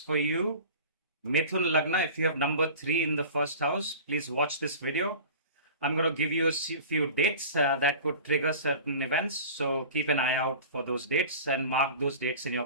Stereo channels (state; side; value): inverted; both; correlation -0.38